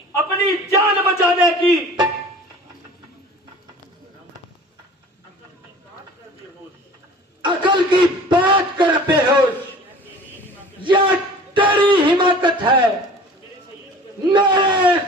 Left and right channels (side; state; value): both; normal; correlation 0.44